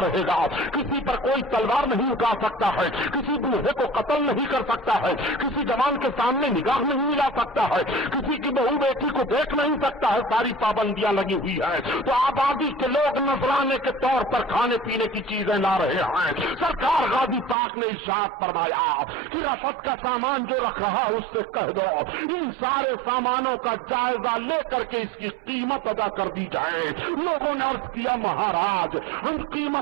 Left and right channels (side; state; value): left; drops out; at 17.6 s